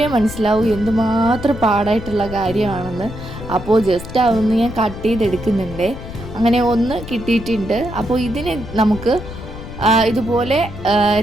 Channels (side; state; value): left; noise; rumble, 12 dB below the sound